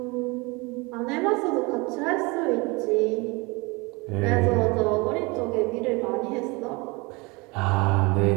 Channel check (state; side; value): quieter; left; 26.5 dB